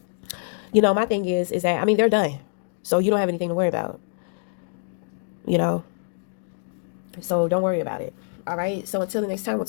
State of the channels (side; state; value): right; silent; 62 dB below the other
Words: my thing is that, I mean, they're done. So you don't have anything to worry about. you know. So don't worry about it. All right. So until the next time, we'll